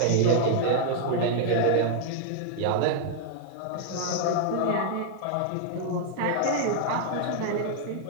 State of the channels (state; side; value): different; both; correlation -0.01